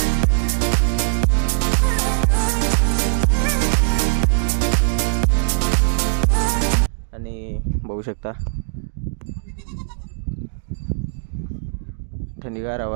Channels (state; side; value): silent; left; digital silence